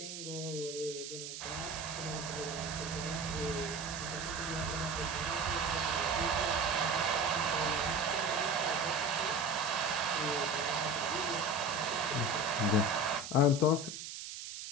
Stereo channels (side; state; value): right; noise; hiss, 8 dB below the sound